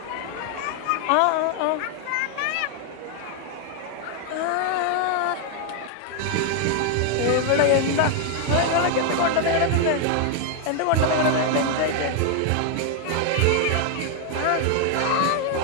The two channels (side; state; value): both; different; correlation 0.00